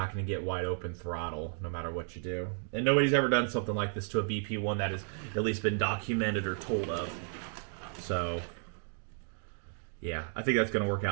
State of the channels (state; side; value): silent; left; 56 dB below the other